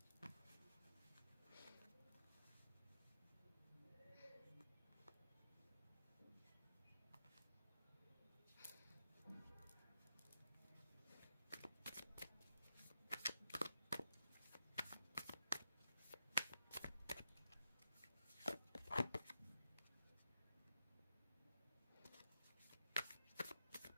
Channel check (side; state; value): both; inverted; correlation -0.86